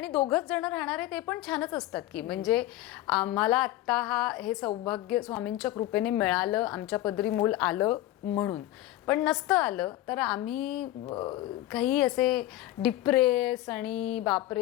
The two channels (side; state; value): right; quieter; 15.2 dB